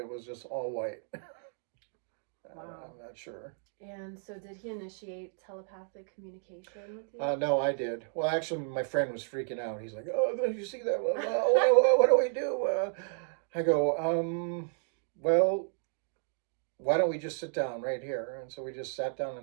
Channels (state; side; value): silent; left; digital silence